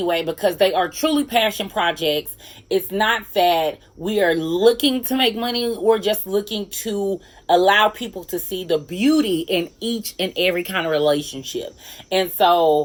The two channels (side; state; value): both; identical; correlation 1.00